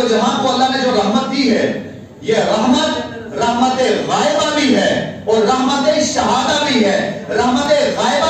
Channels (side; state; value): both; identical; correlation 1.00